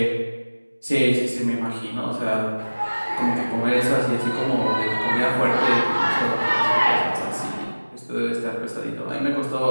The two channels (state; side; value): inverted; both; correlation -1.00